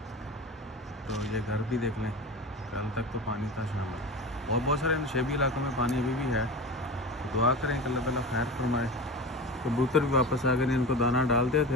तो ये घर भी देख लें, कल तक तो पानी था शाम में। और बहुत सारे नशेबी इलाकों में पानी अभी भी है। तो दुआ करें कि अल्लाह ताला खैर फरमाए। कबूतर भी वापस आ गए, इनको दाना डालते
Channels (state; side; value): normal; both; correlation 0.29